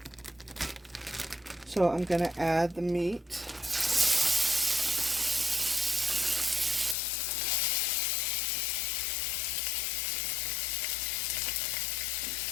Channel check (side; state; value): right; drops out; at 7.0 s